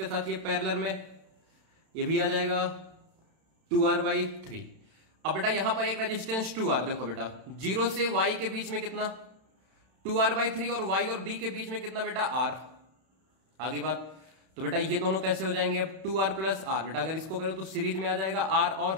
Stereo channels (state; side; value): late; left; 31 ms